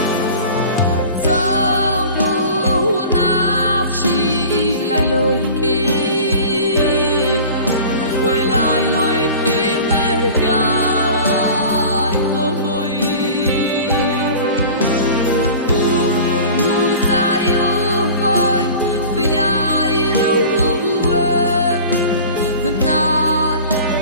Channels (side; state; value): both; inverted; correlation -0.40